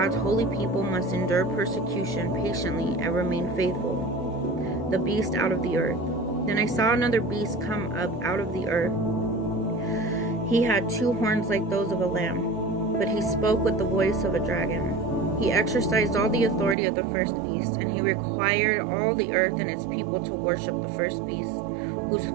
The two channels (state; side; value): drops out; left; at 16.8 s